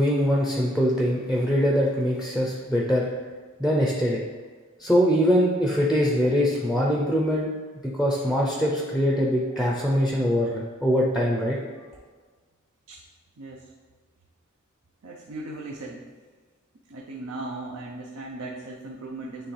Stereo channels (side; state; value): both; normal; correlation 0.71